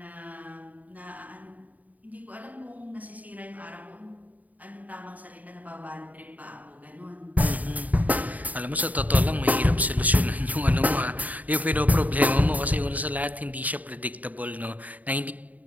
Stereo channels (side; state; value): left; late; 0.075 ms